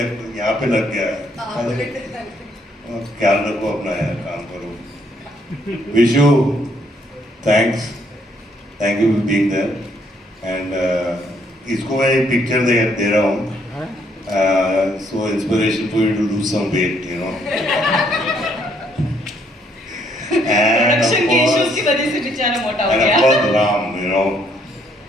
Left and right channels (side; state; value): both; normal; correlation 0.69